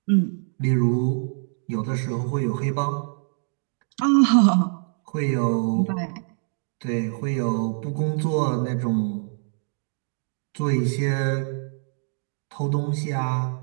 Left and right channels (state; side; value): silent; left; digital silence